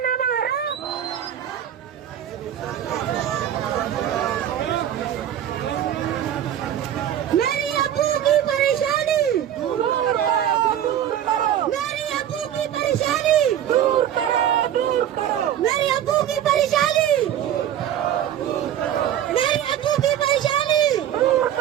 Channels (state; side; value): quieter; left; 10.7 dB